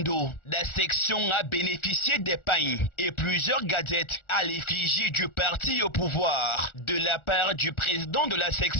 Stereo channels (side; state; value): right; late; 1.4 ms